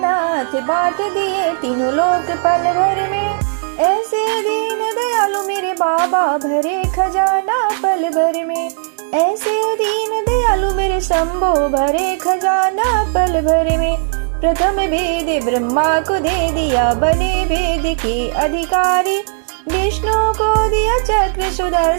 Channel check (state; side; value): silent; left; digital silence